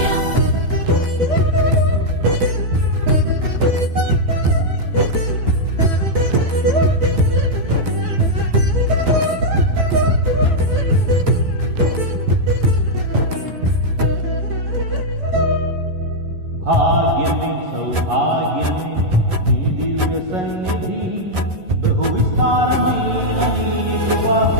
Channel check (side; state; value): left; late; 11 ms